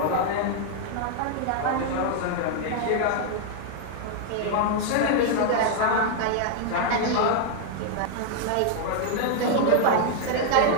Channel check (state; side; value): different; both; correlation 0.00